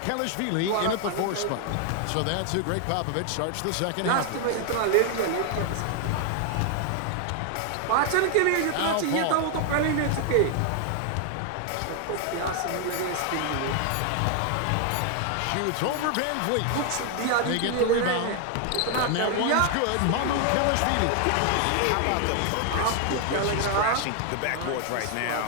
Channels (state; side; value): different; both; correlation 0.00